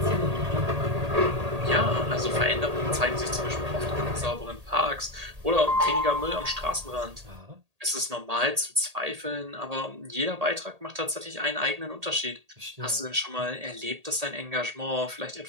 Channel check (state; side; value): late; left; 1.8 ms